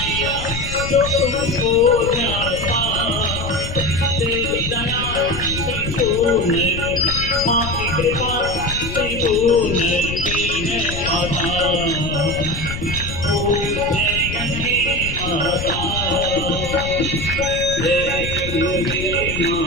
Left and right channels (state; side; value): noise; left; rumble, 7 dB below the sound